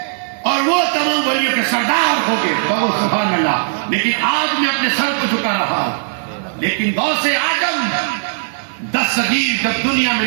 اور وہ تمام ولیوں کے سردار ہو گئے۔ کہو سبحان اللہ، لیکن آج میں اپنے سر کو جھکا رہا ہوں، لیکن غوث اعظم دستگیر جب دنیا میں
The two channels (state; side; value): silent; left; digital silence